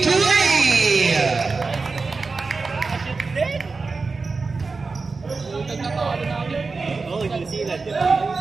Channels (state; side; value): quieter; left; 4.2 dB